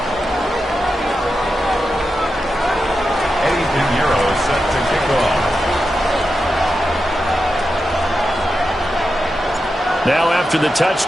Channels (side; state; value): both; normal; correlation 0.89